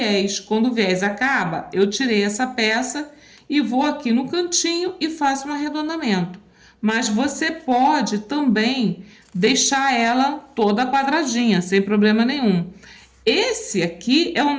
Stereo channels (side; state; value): both; identical; correlation 1.00